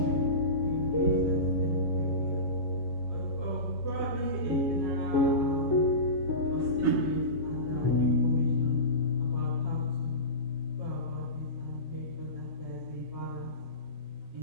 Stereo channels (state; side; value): late; left; 7.3 ms